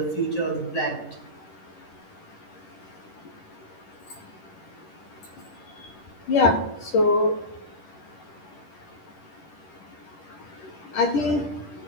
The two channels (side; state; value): right; late; 10 ms